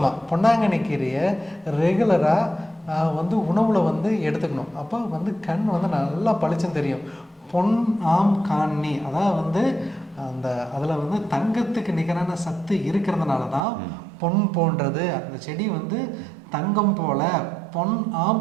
பொன்னாங்கண்ணி கீரையை ரெகுலராக வந்து உணவில் வந்து எடுத்துக்கணும். அப்போ வந்து கண் வந்து நல்லா பளிச்சுன்னு தெரியும். பொன் ஆம் காணி, அதாவது வந்து அதில் வந்து தங்கத்துக்கு நிகரான சத்து இருக்கிறதுனால தான் பொன் போன்றது அந்த செடி வந்து தங்கம் போல பொன்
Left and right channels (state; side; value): drops out; left; at 13.6 s